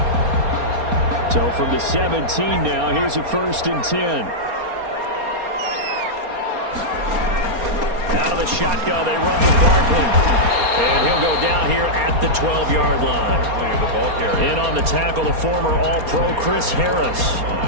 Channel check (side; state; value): left; late; 4.3 ms